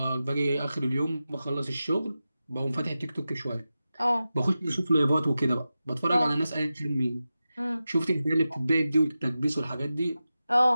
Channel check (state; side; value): inverted; both; correlation -0.93